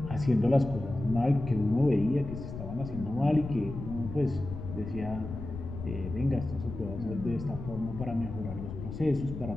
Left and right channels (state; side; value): noise; left; rumble, 9 dB below the sound